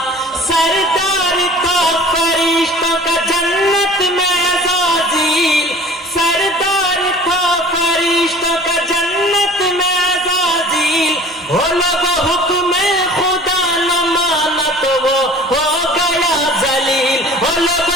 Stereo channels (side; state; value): both; normal; correlation 0.45